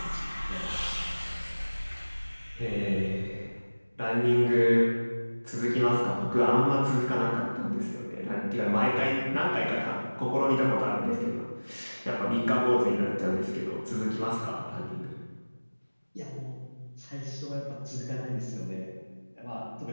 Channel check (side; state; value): both; inverted; correlation -1.00